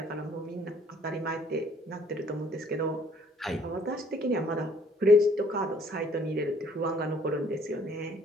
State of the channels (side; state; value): both; normal; correlation 0.60